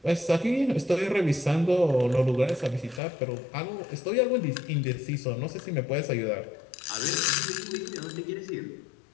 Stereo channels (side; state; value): right; drops out; at 3.0 s